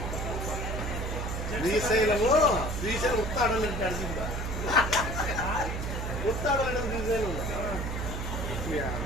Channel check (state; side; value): noise; right; hum, 4 dB below the sound